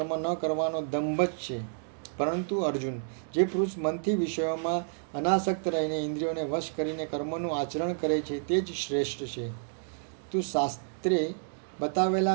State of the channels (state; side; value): silent; left; digital silence